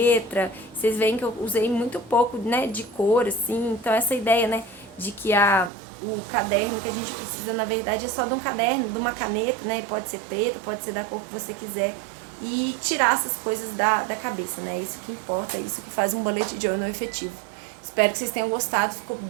Vocês veem que eu usei muito pouco, né, de cor, assim, então essa ideia, né, de que o caderno que a gente precisa, na verdade, é só de um caderno, de uma caneta, né? Pode ser preta, pode ser da cor que você quiser. E tirar essas coisas da cabeça, né? Isso que importa, isso que faz um bullet journal efetivo. Espero que vocês tenham gostado, ficou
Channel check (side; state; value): left; drops out; at 5.7 s